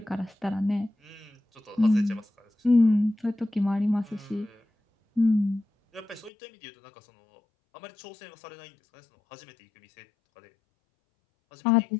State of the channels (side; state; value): right; drops out; at 6.3 s